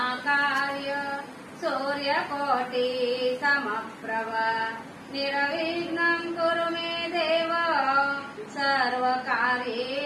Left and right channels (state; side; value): identical; both; correlation 1.00